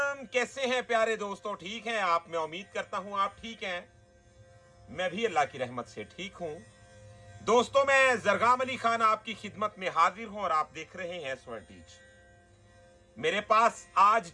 कैसे हैं प्यारे दोस्तों? ठीक हैं आप? मैं उम्मीद करता हूं आप ठीक हैं। मैं भी अल्लाह की रहमत से ठीक हूं। दोस्तों, मैं जरगाम अली खान आपकी खिदमत में हाजिर हूं और आप देख रहे हैं स्वर्ण टीच। मेरे पास आज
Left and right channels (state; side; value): identical; both; correlation 1.00